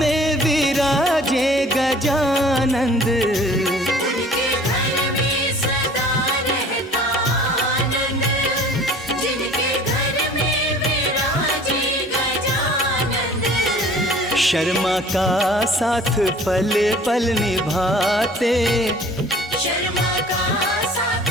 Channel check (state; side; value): normal; both; correlation 0.49